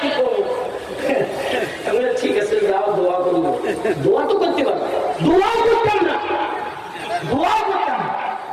করবো? ঠিক আছে, যাও দোয়া করবো। দোয়া তো করতে পারবো, দোয়াও করতাম না। দোয়া করতাম।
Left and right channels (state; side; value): identical; both; correlation 1.00